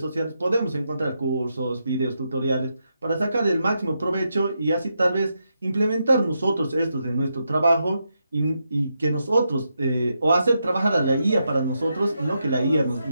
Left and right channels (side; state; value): both; inverted; correlation -0.83